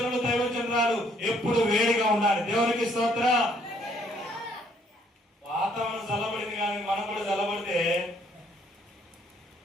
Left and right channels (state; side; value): normal; both; correlation 0.66